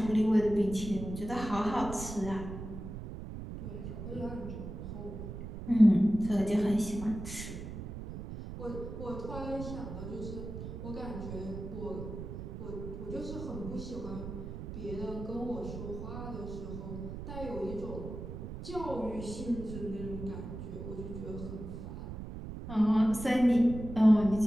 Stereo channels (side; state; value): right; noise; rumble, 8 dB below the sound